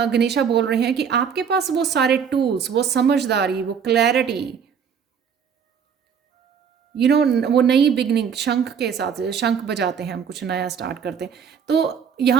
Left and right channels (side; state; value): left; quieter; 7.1 dB